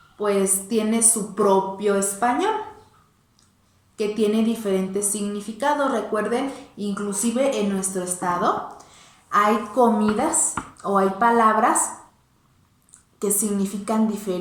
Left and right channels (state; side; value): identical; both; correlation 1.00